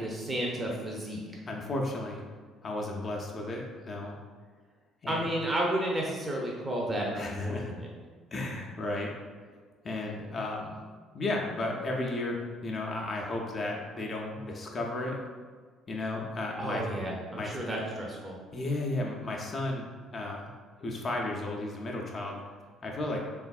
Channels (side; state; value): both; normal; correlation 0.68